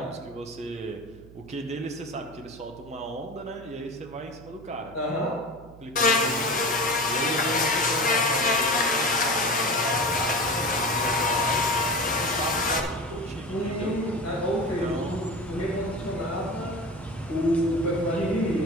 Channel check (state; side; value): noise; right; hum, 20 dB below the sound